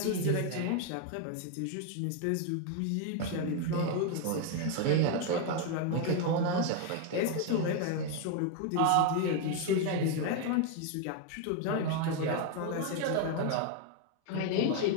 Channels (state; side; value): different; both; correlation 0.01